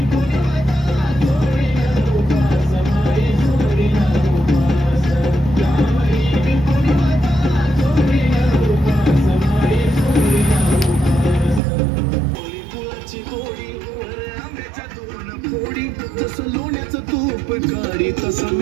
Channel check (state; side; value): drops out; left; at 11.6 s